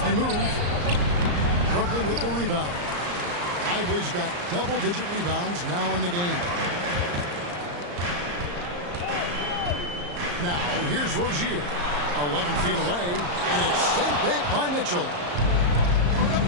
move. Brooklyn with the rebound. Lively's got double-digit rebounds now in the game. Now, here's Rozier. 11 feet away, and it's sent back by Mitchell.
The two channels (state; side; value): late; left; 34 ms